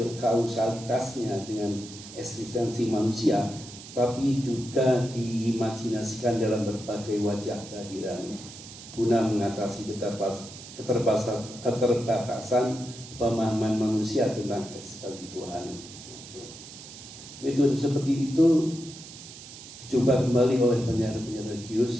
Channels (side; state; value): right; noise; hiss, 15 dB below the sound